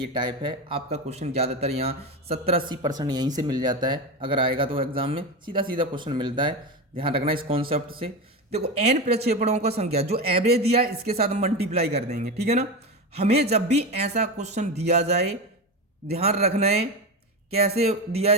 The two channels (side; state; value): both; normal; correlation 0.19